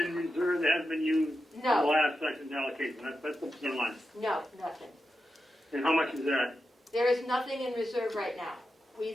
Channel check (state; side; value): normal; both; correlation 0.89